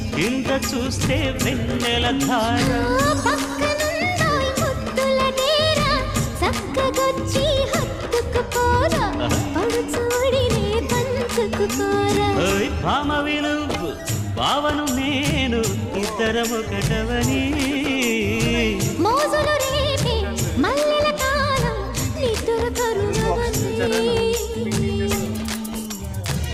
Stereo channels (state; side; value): identical; both; correlation 1.00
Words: కింద చూస్తే వెన్నెల ధార. చక్కగొచ్చి హత్తుకుపోరా, పడుచోడినే పంచుకుపోరా. భామ విలువు భావను నేను ఇద్దరము కటవని, మోజులు రేపే మల్లెల కాలం నిద్ర కరుణవని.